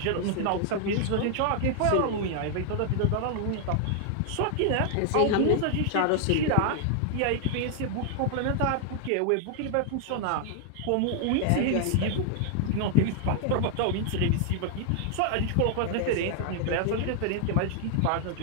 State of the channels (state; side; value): different; both; correlation 0.00